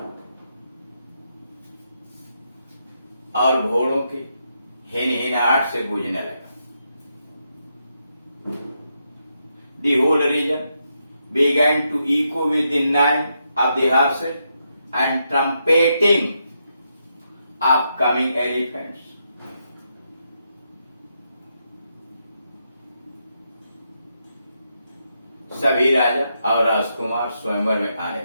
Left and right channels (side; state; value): both; inverted; correlation -0.81